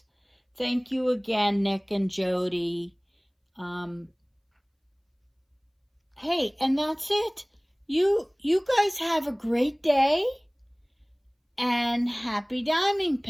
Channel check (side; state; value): both; identical; correlation 1.00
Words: Thank you again, Nick and Jody. Hey, and that's it. You guys have a great day and happy diamond